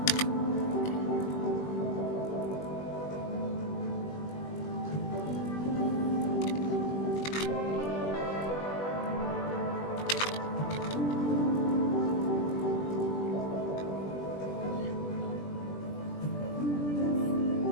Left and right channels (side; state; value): right; late; 20 ms